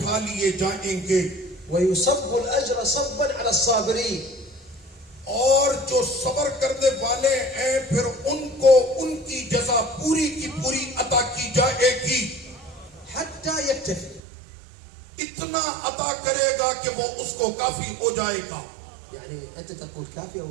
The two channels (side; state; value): left; drops out; at 14.2 s